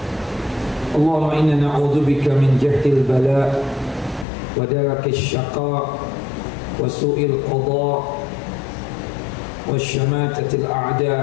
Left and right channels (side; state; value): right; drops out; at 4.2 s